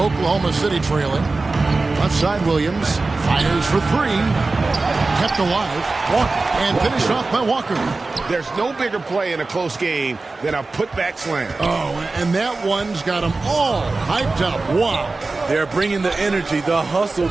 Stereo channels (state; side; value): quieter; left; 3.6 dB